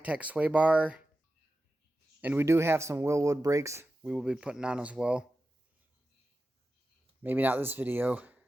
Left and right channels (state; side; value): normal; both; correlation 0.93